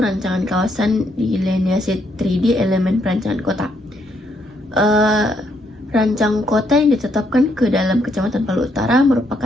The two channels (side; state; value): both; normal; correlation 0.74